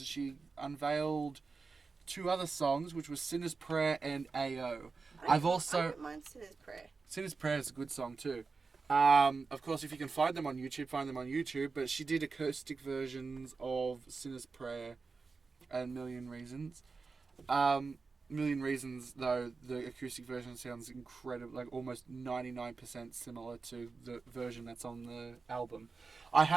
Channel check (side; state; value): left; quieter; 4.5 dB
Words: she unveiled 2 other songs, which was Sinner's Prayer and AO. I don't mind Sinner's Prayer. Sinner's Prayer is a good song too. Of course, if you can find them on YouTube, find them on YouTube. But she did acoustic versions of Sinner's Prayer and Million Reasons. Million Reasons, though, the acoustic version sounds incredible, almost 99% similar to the version that's on the album. I